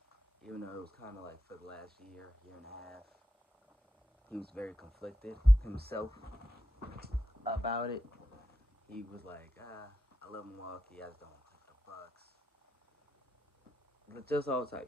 even though it was kind of like for the last year and a half. He was very conflicted himself about it. He was like, I love Milwaukee, I just don't want to play for the Bucks. Just all type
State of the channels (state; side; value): normal; both; correlation 0.86